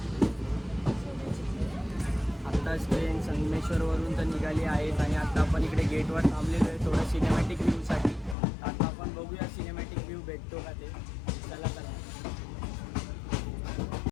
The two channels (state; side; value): drops out; right; at 8.3 s